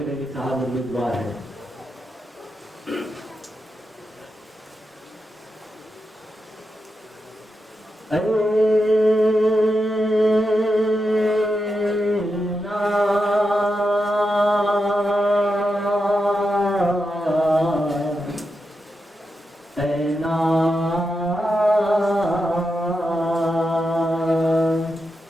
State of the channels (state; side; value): normal; both; correlation 0.87